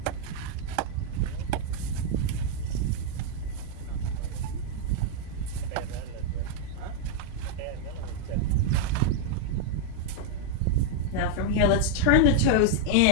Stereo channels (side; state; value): both; different; correlation 0.00